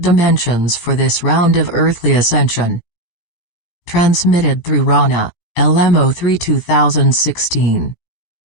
for this round of earthly ascension. Transmitted through Ronna, LM-03-2016.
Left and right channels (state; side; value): late; right; 17 ms